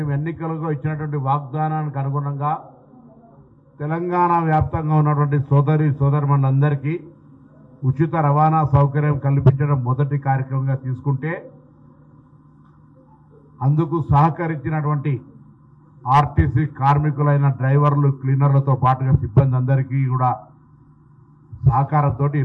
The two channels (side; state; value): both; identical; correlation 1.00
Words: ఎన్నికలకు ఇచ్చినటువంటి వాగ్దానానికి అనుగుణంగా తెలంగాణ వ్యాప్తంగా ఉన్నటువంటి సోదరిమణులందరికీ ఉచిత రవాణా సౌకర్యం కల్పించడం మొదటి కార్యక్రమంగా తీసుకుంటే అందుకు సహకరించినటువంటి ఆర్టీసీ కార్మికులైన డ్రైవర్లు, క్లీనర్లతో పాటుగా సిబ్బంది అందరికీ కూడా సహకారంతో